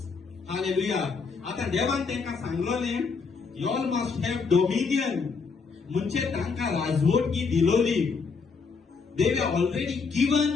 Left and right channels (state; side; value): quieter; right; 5.0 dB